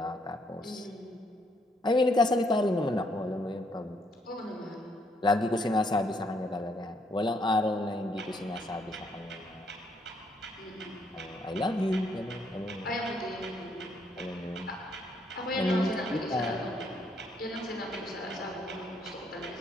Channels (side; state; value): both; normal; correlation 0.72